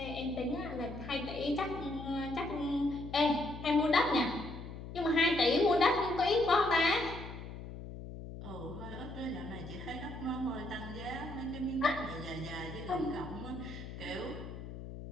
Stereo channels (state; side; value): noise; left; hum, 10 dB below the sound